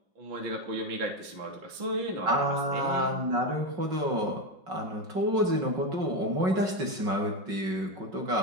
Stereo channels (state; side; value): late; left; 5.4 ms